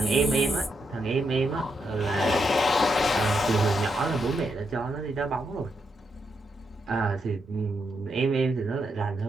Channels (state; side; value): normal; both; correlation 0.81